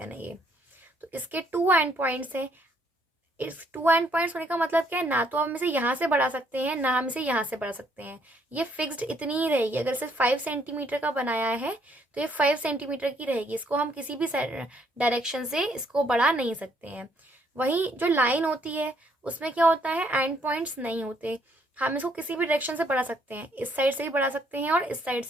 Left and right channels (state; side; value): normal; both; correlation 0.68